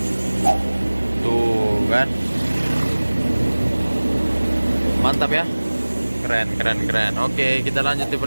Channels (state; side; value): inverted; both; correlation -1.00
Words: Tuh kan. Mantap ya, keren. Oke, kita lanjut di